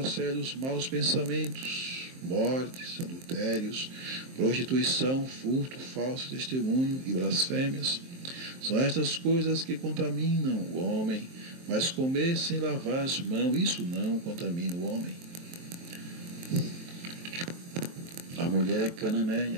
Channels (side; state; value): left; late; 23 ms